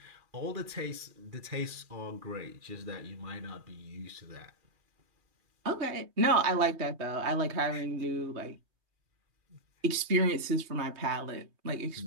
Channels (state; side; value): late; left; 3.1 ms